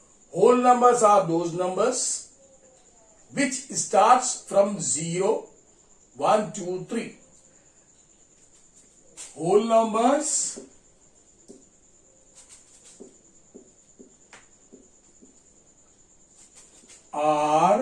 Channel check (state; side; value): identical; both; correlation 1.00